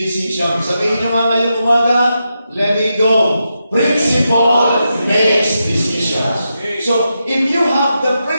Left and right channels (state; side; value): inverted; both; correlation -0.87